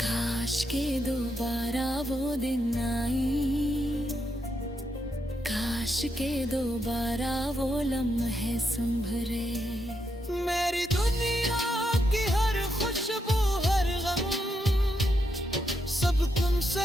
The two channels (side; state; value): both; normal; correlation 0.81